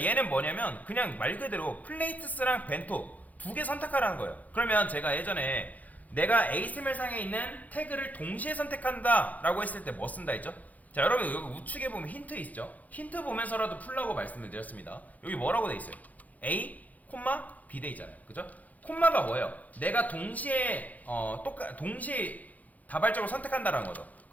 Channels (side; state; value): right; late; 0.077 ms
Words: 얘는 뭐냐면 그냥 말 그대로 플레이트스랑 벤토 두 개 선택하라는 거예요. 그러면 제가 예전에 내가 HTML상에 있는 태그를 동시에 선택한다 라고 했을 때 뭐 쓴다 했죠? 자, 여러분 여기 우측에 보면 힌트 있죠? 힌트 보면서라도 풀라고 말씀을 드렸습니다. 여기 뭐라고 돼 있어요? A, B 돼 있잖아요. 그죠? 콤마가 뭐예요? 내가 동시에 동시에 다발적으로 선택한다라는 거죠.